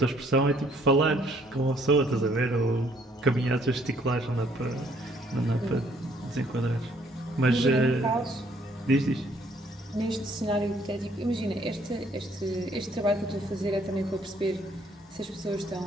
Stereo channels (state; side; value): normal; both; correlation 0.64